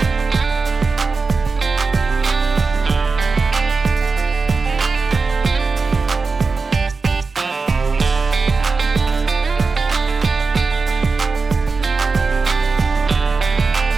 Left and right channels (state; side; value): quieter; left; 4.3 dB